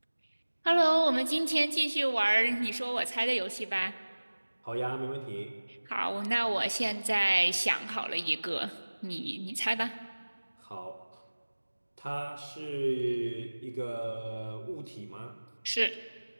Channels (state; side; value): inverted; both; correlation -1.00